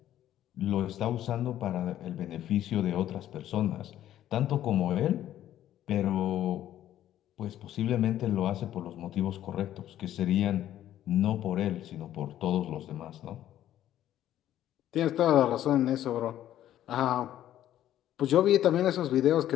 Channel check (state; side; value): quieter; right; 12.2 dB